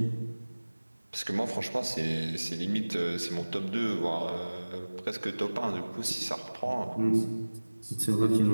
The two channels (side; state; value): both; inverted; correlation -1.00